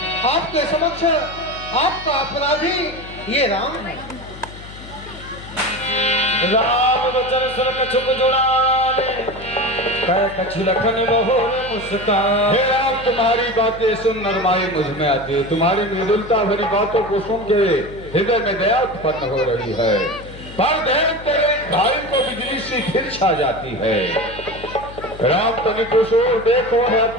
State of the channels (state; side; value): noise; left; hum, 16 dB below the sound